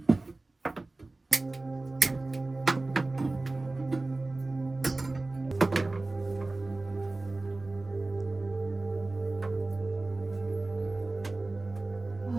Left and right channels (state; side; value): quieter; left; 3.1 dB